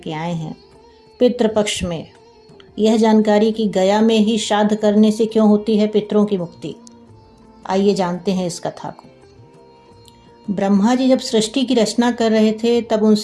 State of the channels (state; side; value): identical; both; correlation 1.00